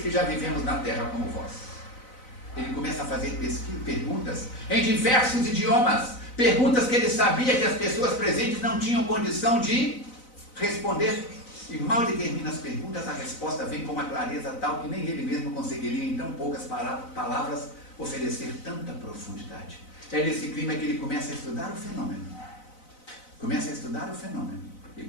que já vivemos na terra como vós. Ele começa a fazer perguntas em diversos idiomas, perguntas que ele sabia que as pessoas presentes não tinham condição de responder. E mal ele termina as perguntas, a resposta vem com uma clareza tal que nem ele mesmo conseguiria em tão poucas palavras oferecer tanta profundidade. É nesse clima que ele começa a estudar o fenômeno. E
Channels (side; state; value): right; late; 4.0 ms